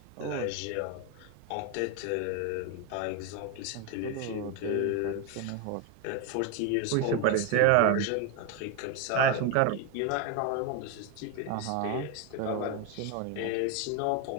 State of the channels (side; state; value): both; different; correlation 0.01